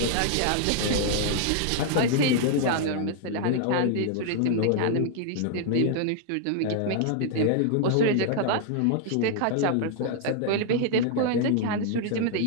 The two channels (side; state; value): both; different; correlation 0.00